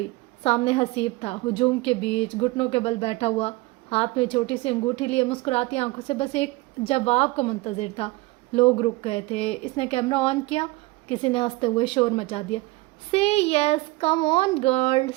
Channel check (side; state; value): left; quieter; 21.6 dB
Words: سامنے حسیب تھا، ہجوم کے بیچ گھٹنوں کے بل بیٹھا ہوا، ہاتھ میں چھوٹی سی انگوٹھی لیے مسکراتی آنکھوں سے بس ایک جواب کو منتظر تھا۔ لوگ رک گئے تھے۔ اس نے کیمرہ آن کیا، کسی نے ہنستے ہوئے شور مچا دیا، سے یس کم آن گرل